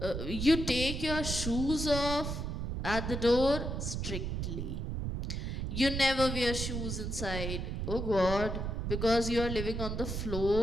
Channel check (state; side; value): noise; right; rumble, 3 dB below the sound